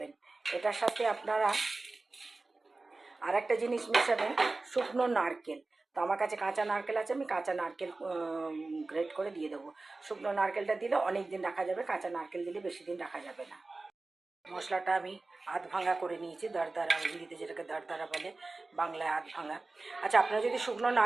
এটার সাথে আপনারা আর একটা জিনিস মেশাবেন, শুকনো নারকেল। তো আমার কাছে কাঁচা নারকেল আছে, আমি কাঁচা নারকেল গ্রেট করে দিয়ে দেবো। শুকনো নারকেলটা দিলে অনেক দিন রাখা যাবে, কাঁচা নারকেল দিলে বেশি দিন রাখা যাবে না। মশলাটা আমি আধ ভাঙা করে নিয়েছি, দরদরা, হিন্দিতে যেটাকে দরদরা বলে, বাংলায় আধ ভাঙা। আচ্ছা, আপনারা যদি শুকনো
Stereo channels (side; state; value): left; quieter; 3.4 dB